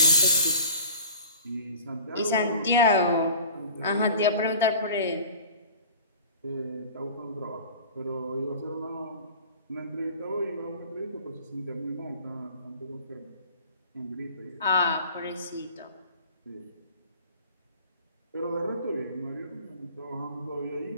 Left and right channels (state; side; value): inverted; both; correlation -0.41